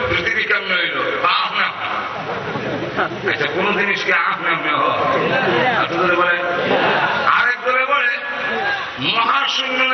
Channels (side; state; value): both; identical; correlation 1.00